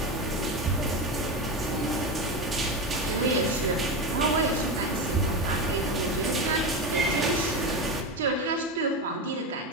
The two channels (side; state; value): both; normal; correlation 0.18